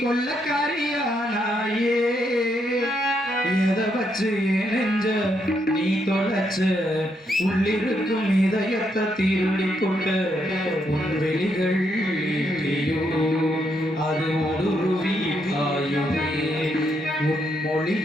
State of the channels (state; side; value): normal; both; correlation 0.77